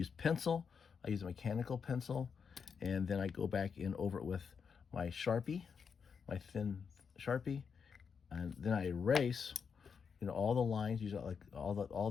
pencil. I use a mechanical pencil, and then I go back in over it with my Sharpie, my thin Sharpie, and then I erase, all the lines, use like all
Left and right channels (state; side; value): quieter; right; 6.2 dB